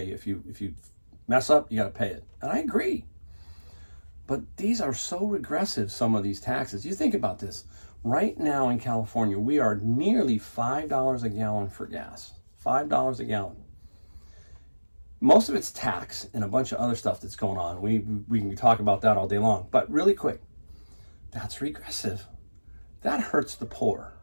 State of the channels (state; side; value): inverted; both; correlation -1.00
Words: If you mess up, you got to pay it. And I agree. But these are so regressive, some of these taxes. You think about this. Right now in California, we are nearly $5 a gallon for gas. $5 a gallon. Most of it's tax and a bunch of other stuff that's going on. We can talk about that all day long. But really quick, that's regressive. That hurts the poor.